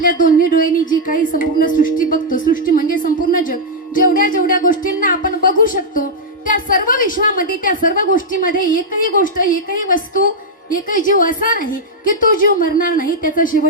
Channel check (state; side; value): normal; both; correlation -0.04